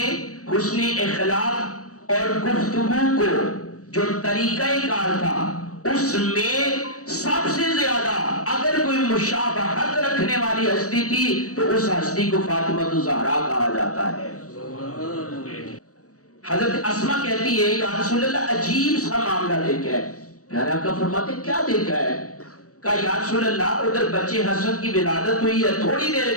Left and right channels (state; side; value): late; right; 0.66 ms